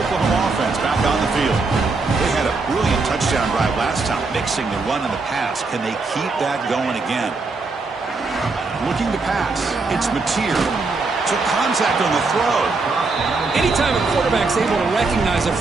offense back on the field. They had a brilliant touchdown drive last time, mixing the run and the pass. Can they keep that going again? Looking to pass. It's Mateer. Took contact on the throw. Anytime a quarterback's able to recognize a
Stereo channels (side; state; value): left; quieter; 3.9 dB